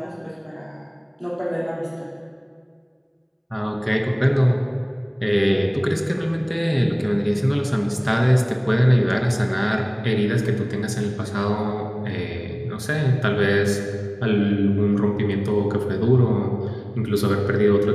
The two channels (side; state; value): both; identical; correlation 1.00